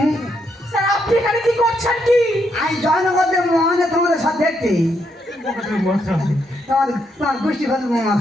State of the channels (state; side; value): normal; both; correlation 0.78